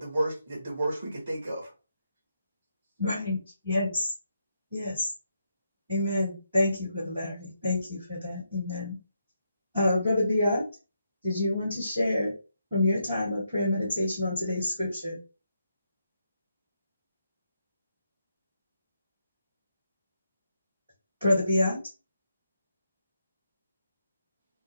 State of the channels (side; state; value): both; inverted; correlation -0.80